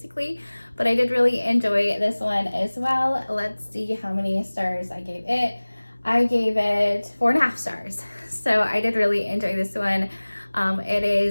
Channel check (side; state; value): both; inverted; correlation -1.00